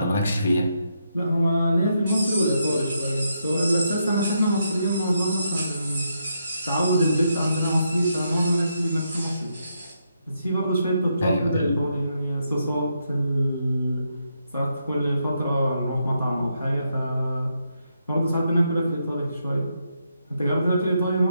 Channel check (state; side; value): inverted; both; correlation -0.80